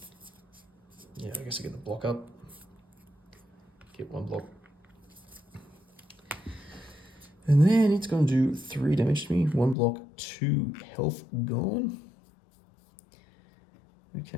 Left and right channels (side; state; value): right; drops out; at 9.8 s